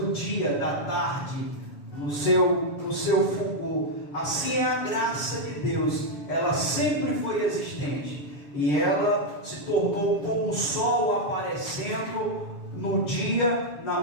dia, da tarde, no seu fulgor. Assim é a graça de Deus, ela sempre foi existente e ela se tornou como o sol aparecendo no dia, na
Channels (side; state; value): right; late; 7.1 ms